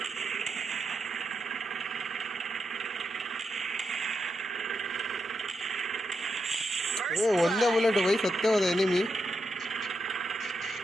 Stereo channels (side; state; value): both; normal; correlation 0.84